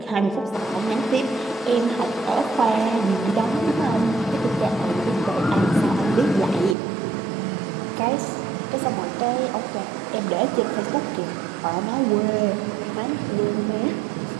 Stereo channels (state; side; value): drops out; left; at 6.8 s